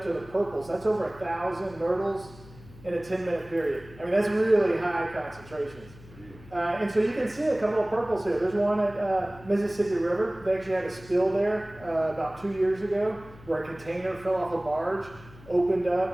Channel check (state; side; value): noise; left; hum, 20 dB below the sound